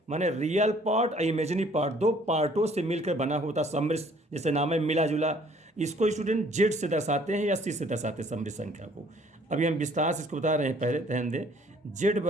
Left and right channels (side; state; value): both; normal; correlation 0.59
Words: माने रियल पार्ट और इमेजिनरी पार्ट, दो पार्टों से मिलकर बना होता समृद्ध। जैसे नाम है मिला जुला। इसको स्टूडेंट जेड से दर्शाते हैं या सी से दर्शाते हैं समृद्ध संख्या को। अभी हम विस्तार से इसको बता रहे हैं, पहले ध्यान दें। जेड